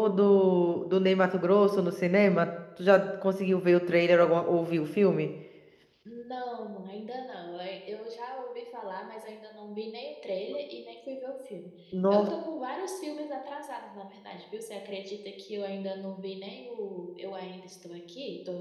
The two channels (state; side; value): identical; both; correlation 1.00